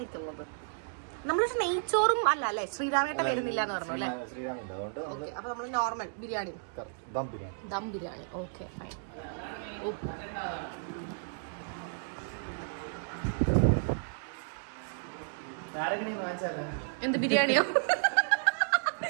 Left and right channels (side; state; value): left; silent; digital silence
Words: നമ്മൾ നെയ്ച്ചോറും അല്ല അല്ലേ? ശ്രീരാമേട്ട വരുന്നില്ല എന്ന് പറഞ്ഞു അല്ലേ? ഓക്കെ. അപ്പൊ നമ്മൾ normal biryani, dum biryani. Okay fine. എന്ത് ബിരിയാണിയോ?